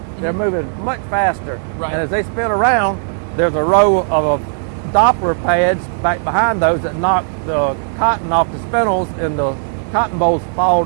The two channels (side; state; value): left; silent; digital silence